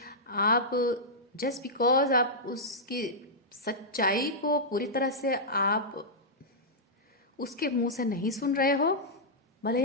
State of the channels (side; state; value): both; normal; correlation -0.10